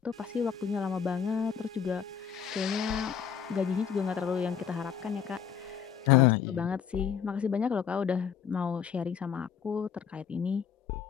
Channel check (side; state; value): right; quieter; 7.6 dB